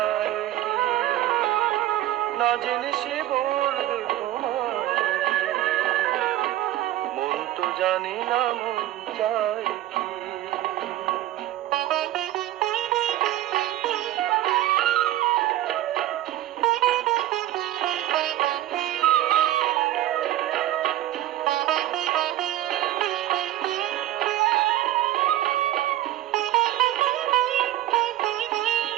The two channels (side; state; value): left; quieter; 14.0 dB